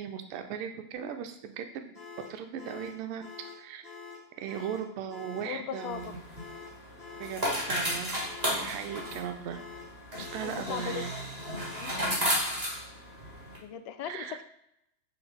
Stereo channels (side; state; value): left; late; 2.9 ms